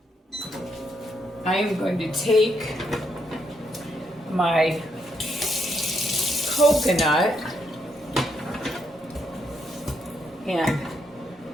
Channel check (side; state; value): both; normal; correlation 0.76